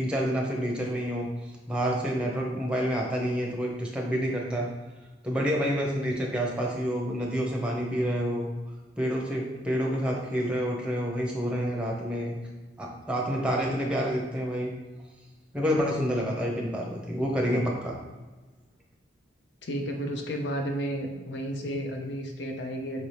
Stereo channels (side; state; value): both; normal; correlation 0.70